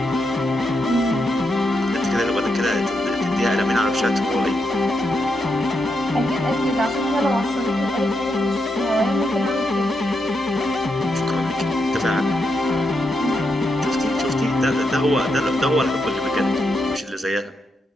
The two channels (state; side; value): normal; both; correlation 0.83